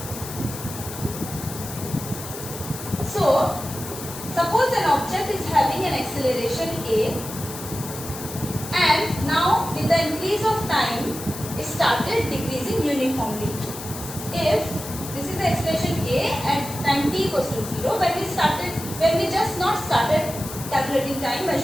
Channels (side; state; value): left; noise; hiss, 11 dB below the sound